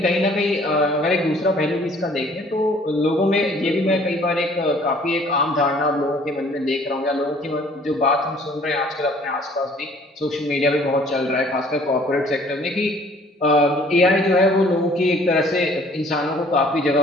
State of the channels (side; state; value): both; normal; correlation 0.56